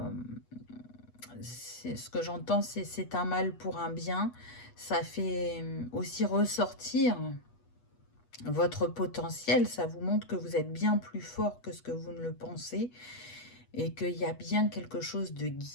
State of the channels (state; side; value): late; right; 8.2 ms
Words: ce que j'entends, c'est un mal pour un bien. Ça fait aussi ressortir votre potentiel. Ça vous montre que vous êtes bien plus fort que ce que vous ne le pensez et qu'il y a bien quelque chose de